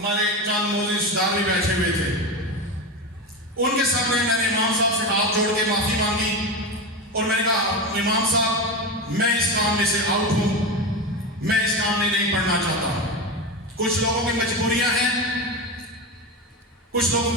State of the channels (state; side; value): normal; both; correlation 0.19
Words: چاند موزی رشتےدار بھی بیٹھے ہوئے تھے. ان کے سامنے میں نے امام صاحب سے ہاتھ جوڑ کے معافی مانگی اور میں نے کہا امام صاحب میں اس کام میں سے آؤٹ ہوں میں اس کام میں نہیں پڑھنا چاہتا. کچھ لوگوں کی مجبوریاں ہیں کچھ لوگوں